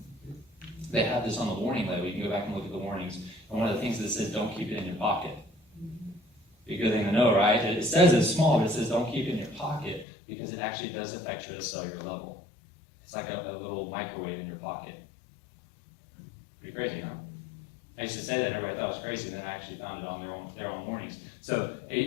they have this on the warning label. You can go back and look at the warnings. And one of the things that says, don't keep it in your pocket. Be a good thing to know, right? It says it's small, but it says don't keep it in your pocket because it actually does affect you at a cellular level. It's like a little microwave in your pocket. Pretty crazy, huh? I used to say that and everybody thought it was crazy, then I actually found it on their own warnings. So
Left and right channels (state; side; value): drops out; right; at 10.1 s